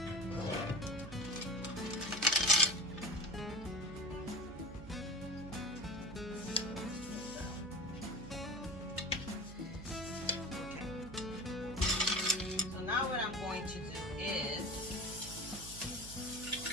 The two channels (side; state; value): right; noise; hum, 13 dB below the sound